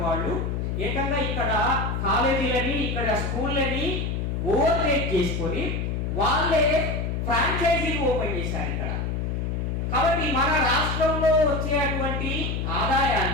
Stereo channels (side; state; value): left; noise; hum, 1 dB below the sound